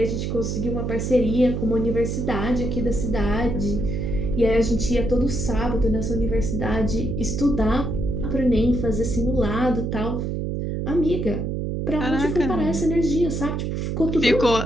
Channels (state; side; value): noise; right; hum, 2 dB below the sound